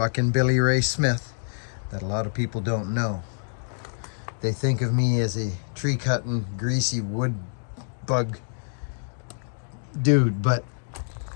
and Billy Ray Smith that a lot of people don't know. They think of me as a tree-cutting, greasy wood bug dude, but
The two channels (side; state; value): right; silent; digital silence